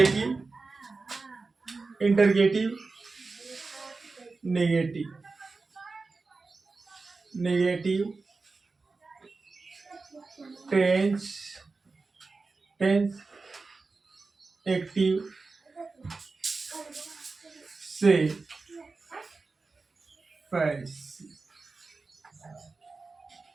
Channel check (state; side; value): quieter; left; 4.0 dB